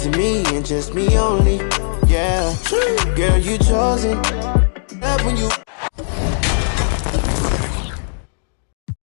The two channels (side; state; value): right; silent; digital silence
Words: me and just me only. Yeah, girl, you chosen. Get up when you.